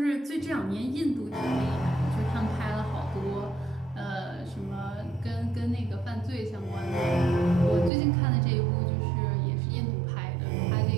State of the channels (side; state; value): left; drops out; at 7.9 s